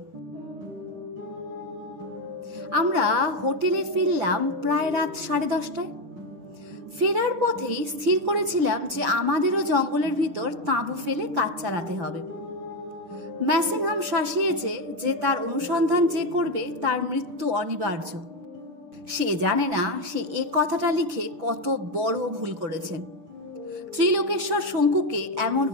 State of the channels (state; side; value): late; left; 6.5 ms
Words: আমরা হোটেলে ফিরলাম প্রায় রাত 10:30টায়। ফেরার পথেই স্থির করেছিলাম যে আমাদেরও জঙ্গলের ভিতর তাঁবু ফেলে কাজ চালাতে হবে। ম্যাসিংহাম শাসিয়েছে যে তার অনুসন্ধান যে করবে তার মৃত্যু অনিবার্য। সে জানে না সে এ কথাটা লিখে কত বড় ভুল করেছেন। ত্রিলোকেশ্বর শঙ্কুকে এমন